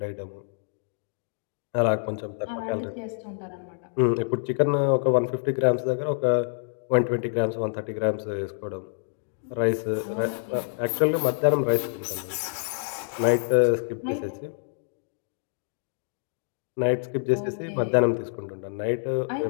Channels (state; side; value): silent; right; digital silence